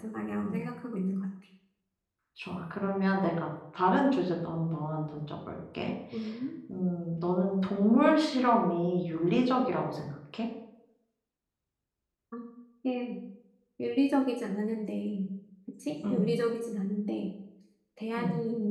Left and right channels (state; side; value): identical; both; correlation 1.00